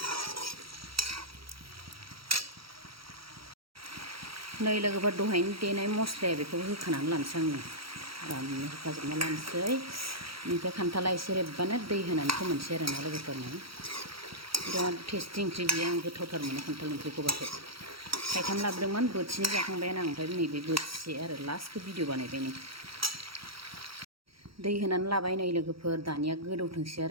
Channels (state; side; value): late; left; 0.75 ms